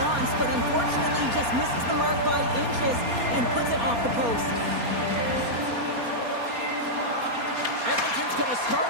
wants, but unfortunately just misses the mark by inches and puts it off the post. Edmonton's going to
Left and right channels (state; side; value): late; left; 4.2 ms